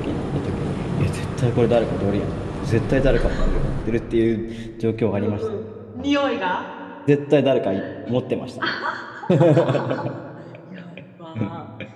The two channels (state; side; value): identical; both; correlation 1.00